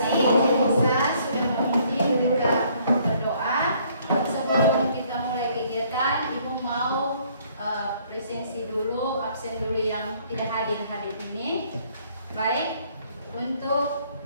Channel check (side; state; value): both; inverted; correlation -0.63